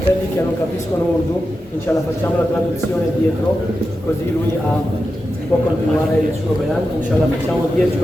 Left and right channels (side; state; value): both; normal; correlation 0.90